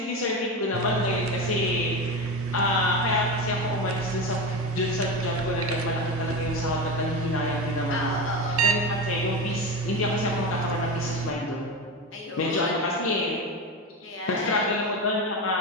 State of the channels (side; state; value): both; normal; correlation 0.21